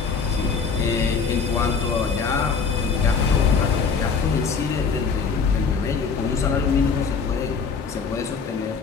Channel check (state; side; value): quieter; right; 5.5 dB